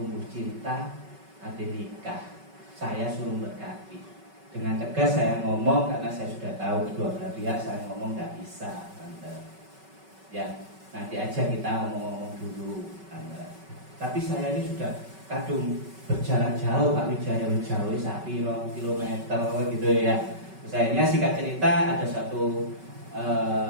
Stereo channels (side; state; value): left; late; 5.3 ms